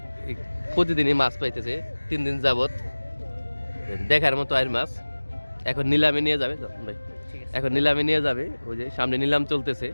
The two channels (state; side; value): inverted; both; correlation -1.00